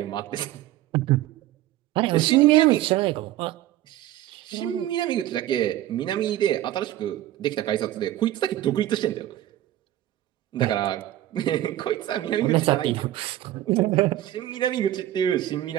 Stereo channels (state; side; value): quieter; left; 13.8 dB